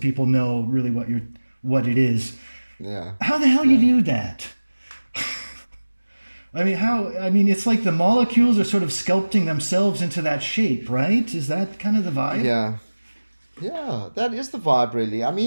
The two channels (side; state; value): both; inverted; correlation -1.00